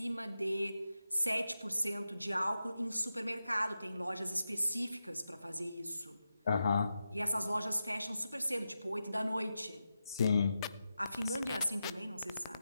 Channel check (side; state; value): both; inverted; correlation -0.90